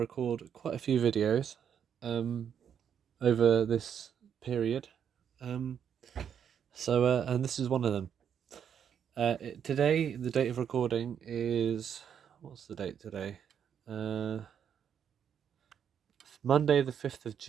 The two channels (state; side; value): quieter; left; 8.3 dB